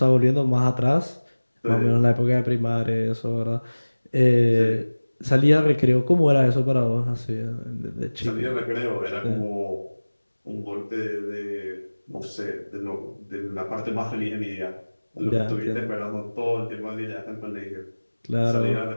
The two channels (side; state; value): both; inverted; correlation -1.00